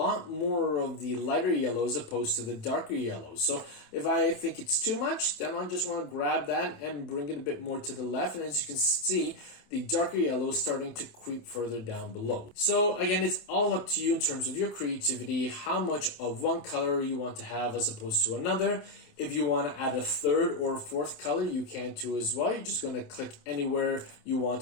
more of the lighter yellow as opposed to the darker yellow. So if I think it's too much, then I'll just want to grab that and bring it a bit more to the left. And as you can see, the darker yellow is starting to creep further down below. So again, it's all up to you in terms of your creativity, how much of one color you want to have as opposed to another. If you want to add a third or a fourth color, you can too as well. You're just going to click anywhere you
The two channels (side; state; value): right; late; 27 ms